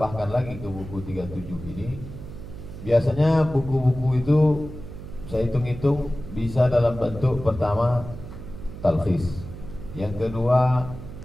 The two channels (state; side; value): noise; right; hum, 12 dB below the sound